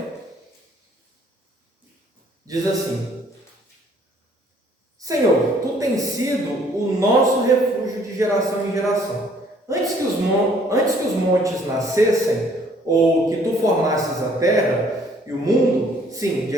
Diz assim: Senhor, tu tens sido o nosso refúgio de geração em geração. Antes que os montes nascessem, ou que tu formasses a terra e o mundo, sim, de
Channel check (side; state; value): both; normal; correlation 0.61